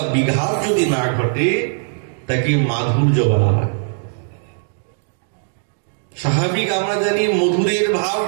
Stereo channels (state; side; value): silent; left; digital silence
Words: বিঘাত যদি না ঘটে, তাকে মাধুর্য বলা হয়। স্বাভাবিক আমরা জানি মধুরের ভাব